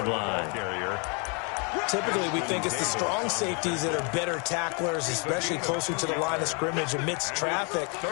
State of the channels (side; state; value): right; quieter; 34.6 dB